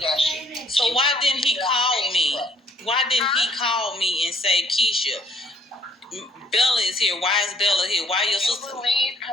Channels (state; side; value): normal; both; correlation 0.62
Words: shit. So why didn't he call me? Why didn't he call me and say, Keisha, Bella is here. Why is Bella here? Why your sister? You believe